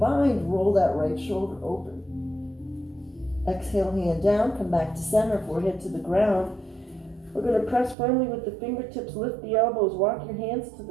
roll that right shoulder open. Exhale, hand down, come back to center, forehead to the ground. We're going to press firmly with the fingertips, lift the elbows, walk your hands to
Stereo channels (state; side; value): drops out; left; at 8.0 s